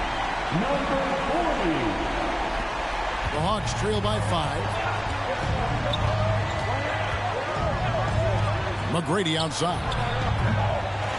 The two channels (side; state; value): both; identical; correlation 1.00